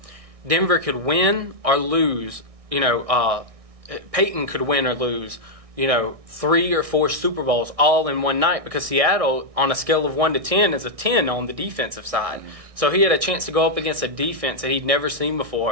Denver could win or lose. Peyton could win or lose, 3 or 4 Super Bowls all in one night, because Seattle, on a scale of 1 to 10, is a 10 on the defensive side. So he had a chance to go up against a defense that he'd never seen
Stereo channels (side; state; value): left; late; 1.6 ms